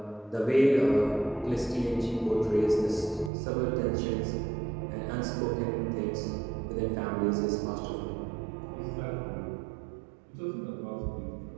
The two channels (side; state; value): left; drops out; at 3.3 s